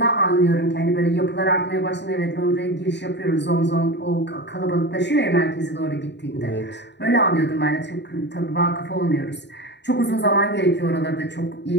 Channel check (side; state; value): right; late; 0.50 ms